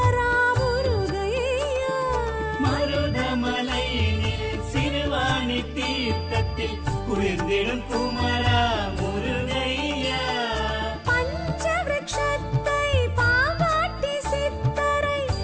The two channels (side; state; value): both; identical; correlation 1.00